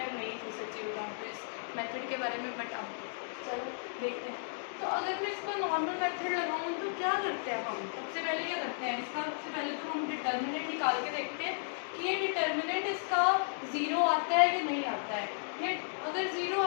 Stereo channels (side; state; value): right; silent; digital silence